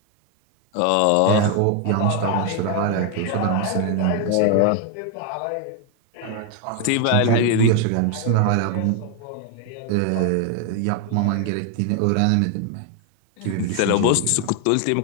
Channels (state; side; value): different; both; correlation 0.01